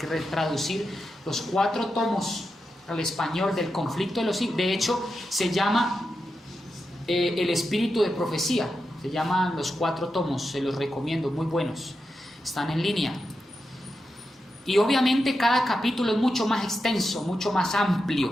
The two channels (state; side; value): normal; both; correlation 0.88